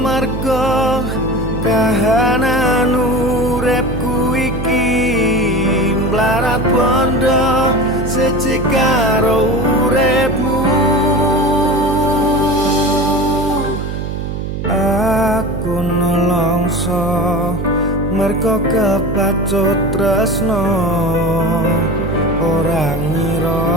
kahanan uripku iki mlarat bondo siji karo uripmu. Aku nelongso merga kepacut tresno ora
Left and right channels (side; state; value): right; noise; hum, 5 dB below the sound